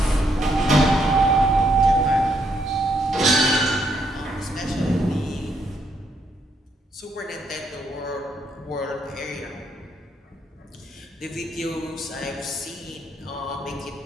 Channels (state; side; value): normal; both; correlation 0.74